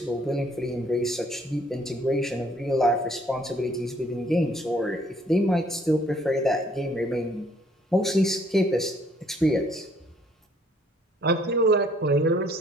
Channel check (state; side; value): normal; both; correlation 0.62